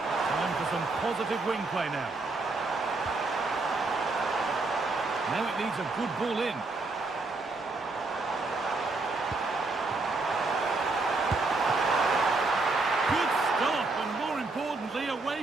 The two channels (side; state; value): left; quieter; 3.5 dB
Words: Time for some positive wing play now. Now it needs a good ball in. Good stop, and more importantly,